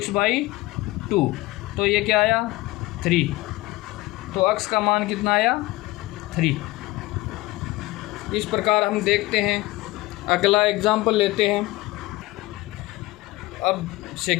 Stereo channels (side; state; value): right; quieter; 20.0 dB